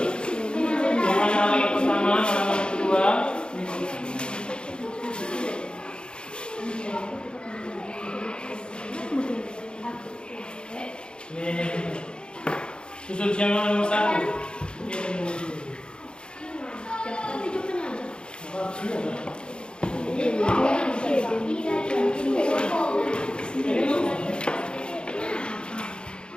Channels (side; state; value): right; late; 0.052 ms